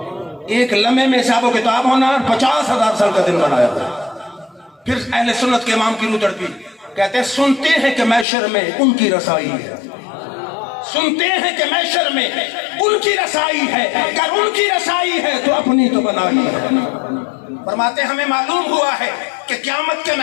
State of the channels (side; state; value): right; drops out; at 8.2 s